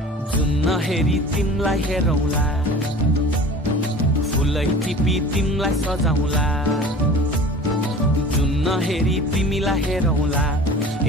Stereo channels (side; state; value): both; normal; correlation 0.41